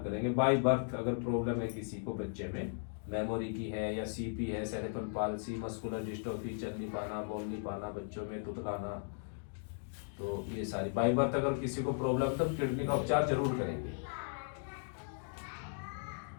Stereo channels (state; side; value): silent; right; digital silence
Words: करेंगे। बाय बर्थ अगर प्रॉब्लम है किसी को बच्चे में, मेमोरी की है या सीपी है, सेरेब्रल पाल्सी, मस्कुलर डिस्ट्रोफी, चल नहीं पाना, बोल नहीं पाना, बच्चों में तुतलाना, तो ये सारी बाय बर्थ अगर किसी को प्रॉब्लम है तो किडनी का उपचार जरूर करेंगे।